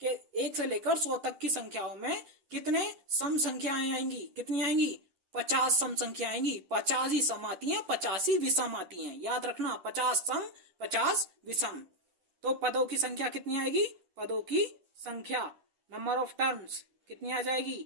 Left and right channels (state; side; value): late; left; 10 ms